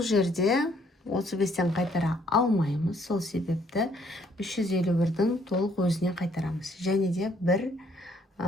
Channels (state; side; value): normal; both; correlation 0.66